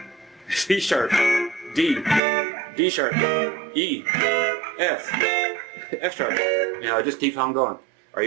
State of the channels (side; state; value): left; drops out; at 2.2 s